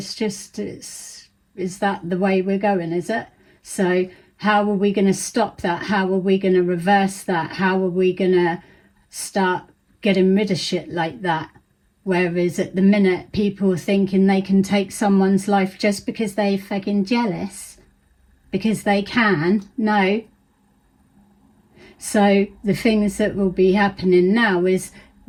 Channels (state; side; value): identical; both; correlation 1.00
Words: just, is that the way we're going, is it? So how are we going to stop that? How are we going to reverse that? How are we going to start getting rid of shit like that? Whereas at the minute, people are thinking they can take someone's life just because they're fucking jealous, because they can. No. So the things that will be happening now is